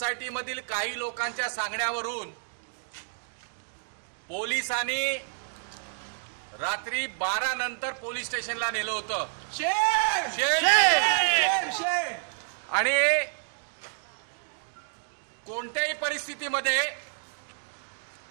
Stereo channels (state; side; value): silent; left; digital silence